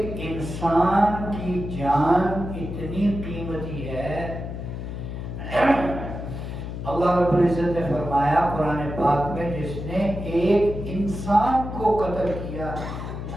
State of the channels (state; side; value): noise; left; hum, 7 dB below the sound